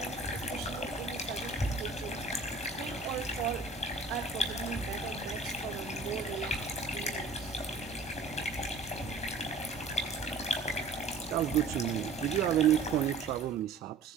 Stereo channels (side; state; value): left; quieter; 3.8 dB